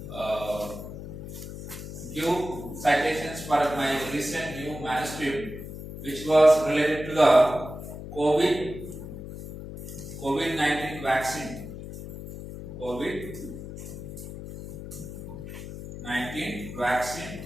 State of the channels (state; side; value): noise; left; hum, 10 dB below the sound